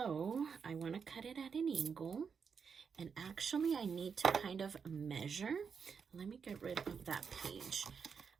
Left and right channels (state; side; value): quieter; left; 6.2 dB